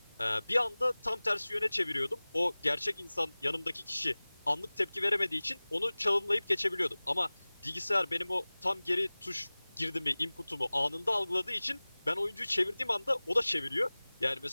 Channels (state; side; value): inverted; both; correlation -1.00